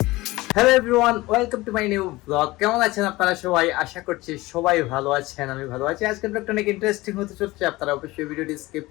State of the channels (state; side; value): quieter; right; 19.9 dB